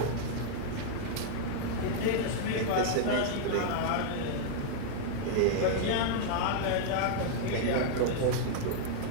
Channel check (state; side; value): different; both; correlation -0.01